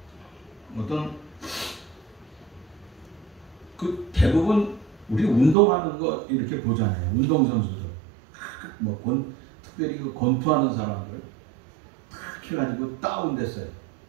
있어요. 어떤 그 대부분 우리 운동하는 거 이렇게 보잖아요. 운동선수들 특별히 그 권투하는 사람들 탁 해가지고 다운됐어요.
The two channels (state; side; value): drops out; left; at 5.6 s